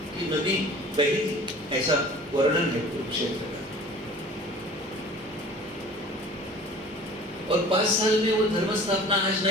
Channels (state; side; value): normal; both; correlation 0.45